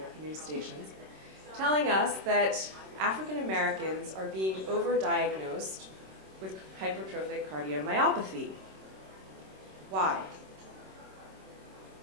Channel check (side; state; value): left; late; 26 ms